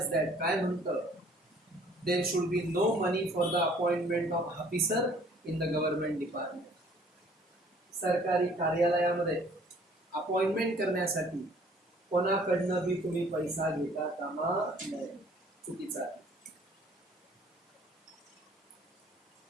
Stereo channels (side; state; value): both; normal; correlation 0.56